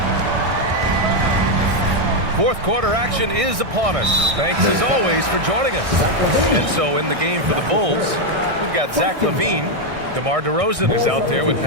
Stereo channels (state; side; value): late; left; 1.6 ms